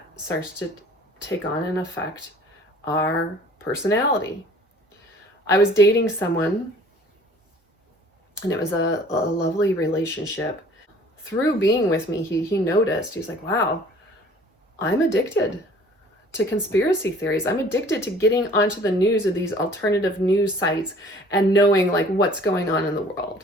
starts to take on and affect our personality. I was dating someone, and it was a lovely relationship. Through being with me, he noticed, he was like, wow, I'm addicted to conspiracy theories. I'm addicted to getting onto the news of these alternative news sites and knowing like what's going on in the world.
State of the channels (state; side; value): normal; both; correlation 0.51